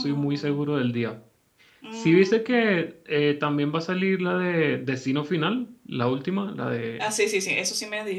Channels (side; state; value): both; identical; correlation 1.00